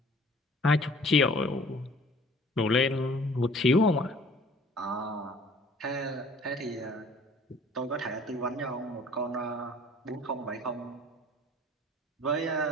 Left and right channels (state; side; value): normal; both; correlation 0.51